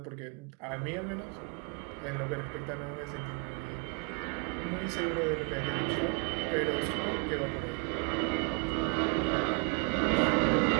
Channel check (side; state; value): left; quieter; 33.1 dB